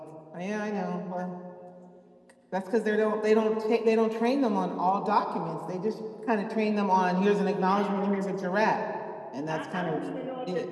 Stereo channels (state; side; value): identical; both; correlation 1.00